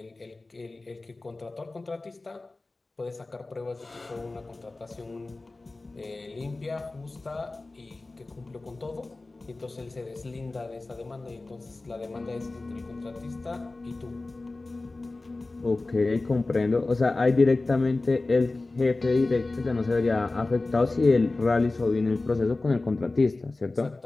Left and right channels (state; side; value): quieter; right; 3.2 dB